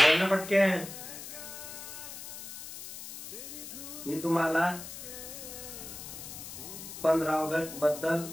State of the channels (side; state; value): left; noise; hiss, 11 dB below the sound